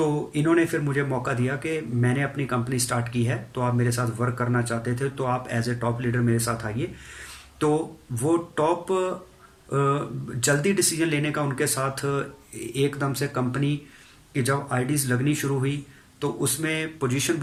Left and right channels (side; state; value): both; identical; correlation 1.00